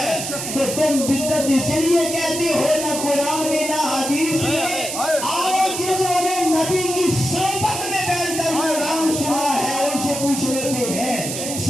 تو تم بدعت اس لیے کہتے ہو نہ قرآن میں نہ حدیث میں۔ آؤ جنہوں نے نبی کی صحبت میں بیٹھ کر قرآن سنا ہے ان سے پوچھ لیتے ہیں،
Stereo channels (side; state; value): right; noise; hiss, 5 dB below the sound